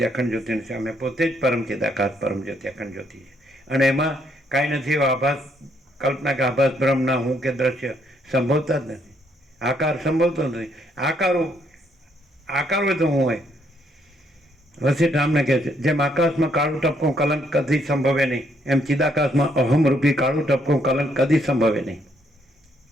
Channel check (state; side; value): normal; both; correlation 0.71